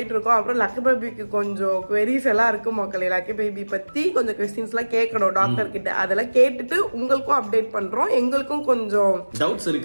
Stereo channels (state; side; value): inverted; both; correlation -1.00